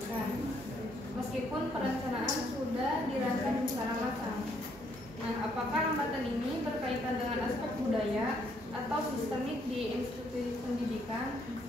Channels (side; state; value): both; normal; correlation 0.70